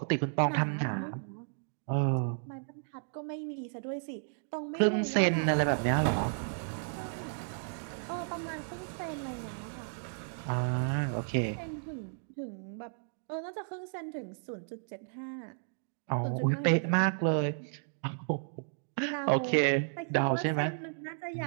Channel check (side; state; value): left; silent; digital silence